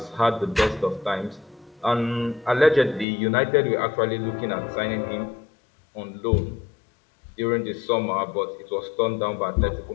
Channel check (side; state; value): right; drops out; at 3.1 s